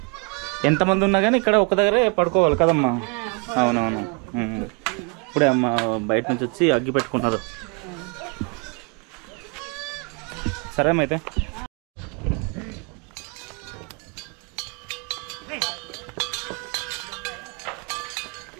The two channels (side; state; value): left; quieter; 33.5 dB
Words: ఎంతమంది ఉన్నా కానీ ఇక్కడ ఒక దగ్గరే పడుకోవాలి కదమ్మా. అవునవును. ఇప్పుడే అమ్మ బయట నుంచి వచ్చి అగ్గి పెట్టుకుంటున్నారు. సరే అమ్మ అయితే.